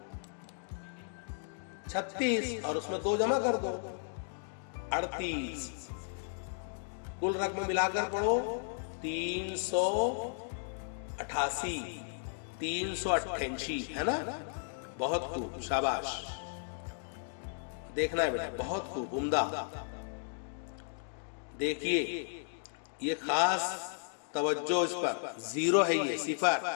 36 और उसमें 2 जमा कर दो 38। कुल रकम मिलाकर पढ़ो 388, 388 है ना। बहुत खूब, शाबाश। देखना है बेटा, बहुत खूब, उम्दा। देखिए ये खास तवज्जो इस पर, 0 है ये,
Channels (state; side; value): silent; right; digital silence